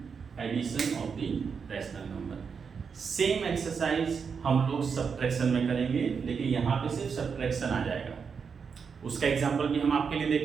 addition of the rational number. Same exercise हम लोग सब्ट्रैक्शन में करेंगे, लेकिन यहाँ पे सिर्फ सब्ट्रैक्शन आ जाएगा। उसका एग्जांपल भी हम आपके लिए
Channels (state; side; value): quieter; left; 6.0 dB